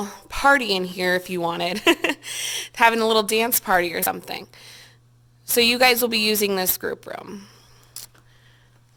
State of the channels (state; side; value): identical; both; correlation 1.00